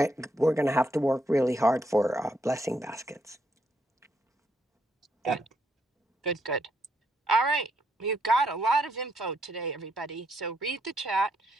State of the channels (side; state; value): both; normal; correlation 0.76